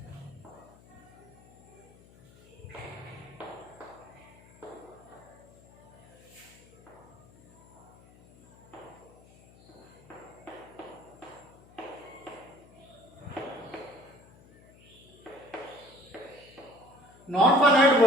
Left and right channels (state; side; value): noise; left; hum, 25 dB below the sound